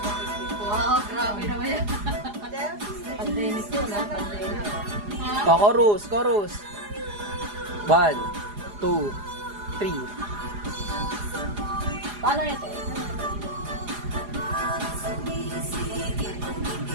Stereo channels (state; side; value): late; left; 4.9 ms